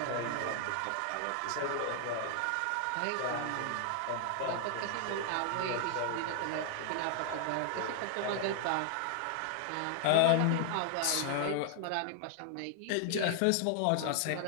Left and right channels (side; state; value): both; different; correlation 0.00